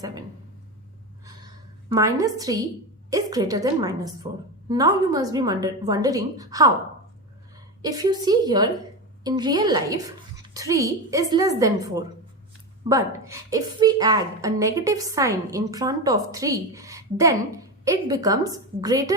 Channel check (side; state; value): both; normal; correlation 0.19